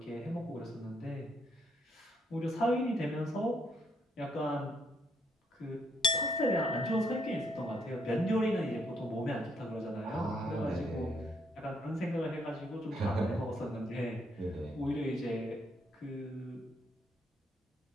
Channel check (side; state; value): both; normal; correlation 0.73